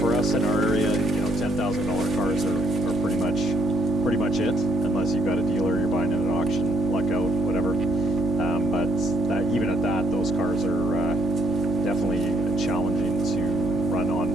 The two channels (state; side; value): normal; both; correlation 0.72